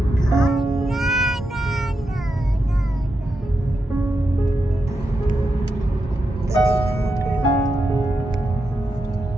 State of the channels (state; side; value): normal; both; correlation 0.86